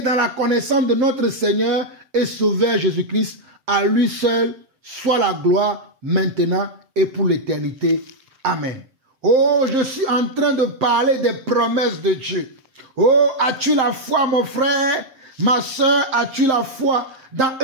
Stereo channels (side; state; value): left; late; 7.6 ms